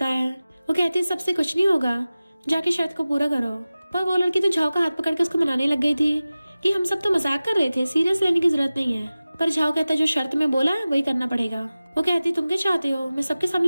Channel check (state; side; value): inverted; both; correlation -0.97